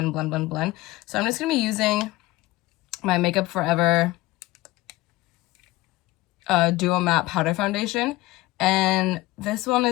I'm just gonna be using my Makeup Forever Duo Matte Powder Foundation, and this one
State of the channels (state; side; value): quieter; right; 19.2 dB